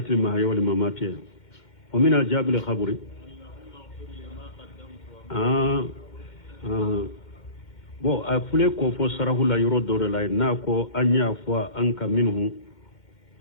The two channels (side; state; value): right; late; 2.1 ms